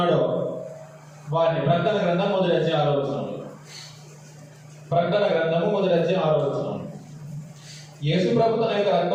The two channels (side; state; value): both; identical; correlation 1.00